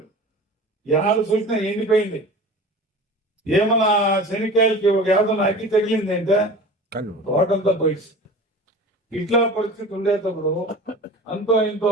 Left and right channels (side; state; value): both; normal; correlation 0.38